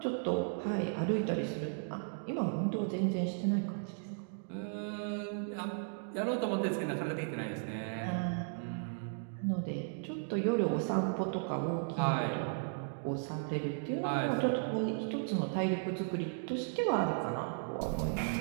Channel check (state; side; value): silent; left; digital silence